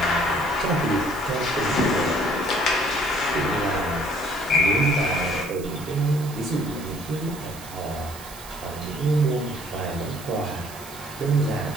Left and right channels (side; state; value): right; noise; hiss, 16 dB below the sound